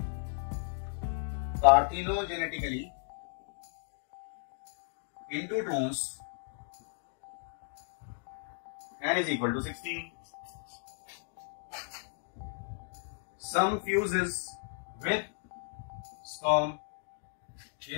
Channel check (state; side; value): silent; right; digital silence